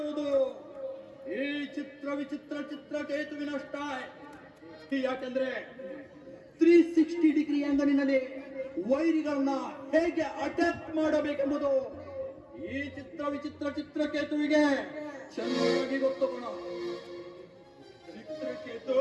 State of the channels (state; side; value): identical; both; correlation 1.00